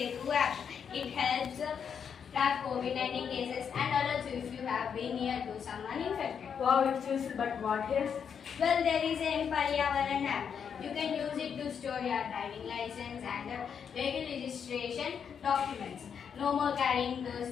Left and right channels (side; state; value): right; quieter; 7.2 dB